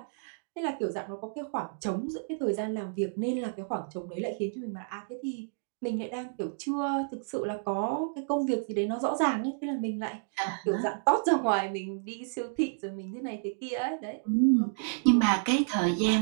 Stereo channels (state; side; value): silent; left; digital silence